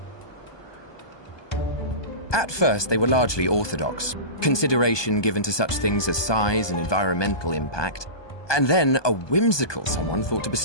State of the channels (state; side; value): late; right; 1.2 ms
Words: At first, they were largely orthodox, consideration given to such things as size and environmental impact, and then a whimsical someone thought to